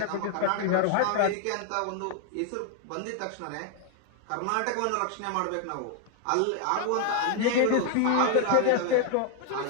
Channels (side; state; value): both; different; correlation 0.00